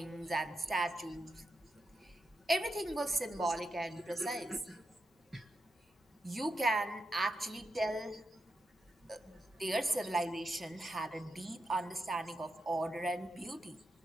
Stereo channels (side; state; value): both; normal; correlation 0.86